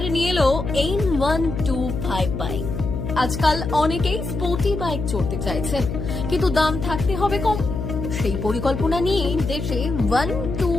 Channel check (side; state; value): left; noise; hum, 4 dB below the sound